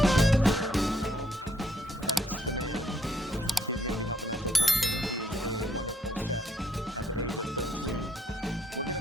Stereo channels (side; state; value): both; normal; correlation 0.70